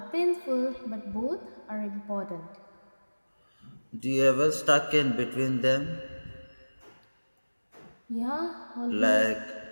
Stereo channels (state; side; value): inverted; both; correlation -1.00